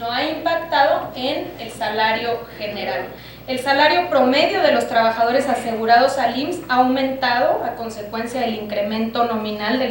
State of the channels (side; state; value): both; identical; correlation 1.00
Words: ha impactado en el salario general. El salario promedio de los trabajadores asegurados al IMSS ha aumentado a consecuencia del incremento nominal